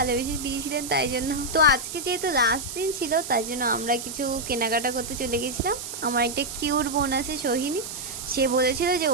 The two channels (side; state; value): right; noise; hiss, 8 dB below the sound